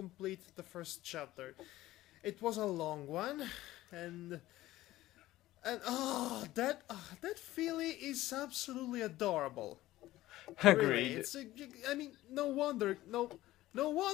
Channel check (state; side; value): quieter; right; 16.0 dB